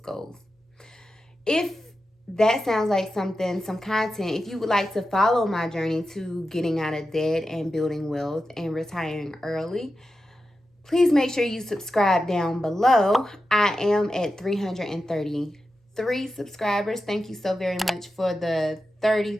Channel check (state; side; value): normal; both; correlation 0.91